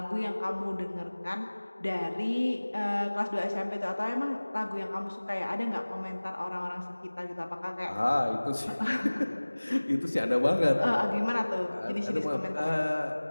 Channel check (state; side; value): inverted; both; correlation -1.00